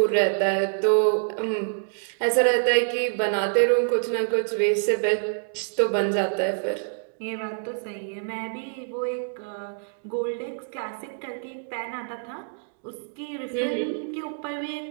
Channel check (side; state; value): left; silent; digital silence